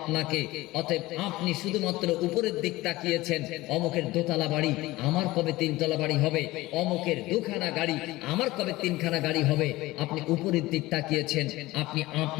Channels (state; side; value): quieter; right; 18.8 dB